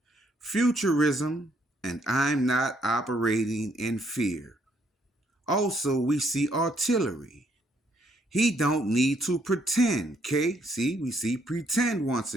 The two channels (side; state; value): both; normal; correlation 0.70